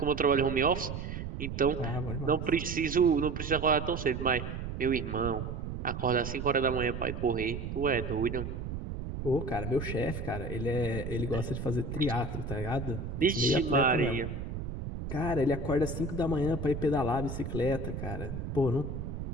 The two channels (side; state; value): right; noise; rumble, 6 dB below the sound